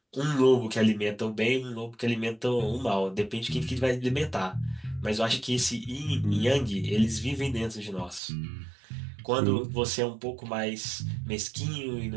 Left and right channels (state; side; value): drops out; left; at 8.2 s